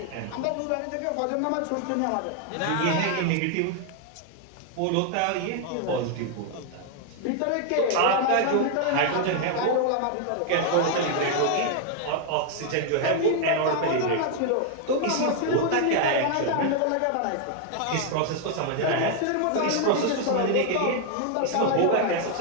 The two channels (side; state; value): both; different; correlation 0.00